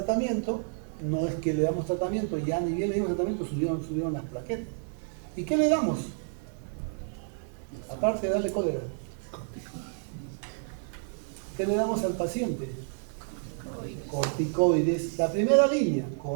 no es que le damos tratamiento y ya ni bien le dimos tratamiento, subieron las plaquetas. ¿Y qué le damos? Aparte de darle cólera. ¿Qué le damos al paciente? Corticoides. La primera línea,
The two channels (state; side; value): silent; left; digital silence